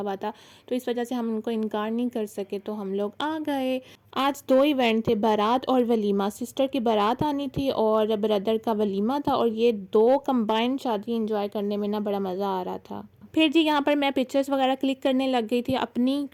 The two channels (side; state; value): both; identical; correlation 1.00